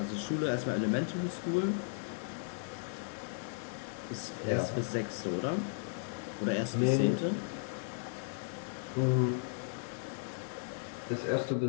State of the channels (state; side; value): silent; right; digital silence